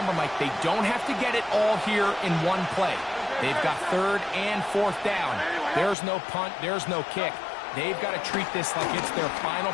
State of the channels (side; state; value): right; drops out; at 6.0 s